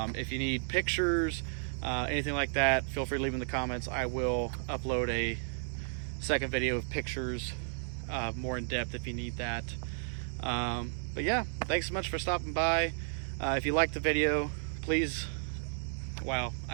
you need pictures, anything like that, feel free to leave in the comments. I will upload a second video of pictures, more in depth if you need that. But yeah, thanks so much for stopping by. If you liked the video, please, wow,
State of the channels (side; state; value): left; silent; digital silence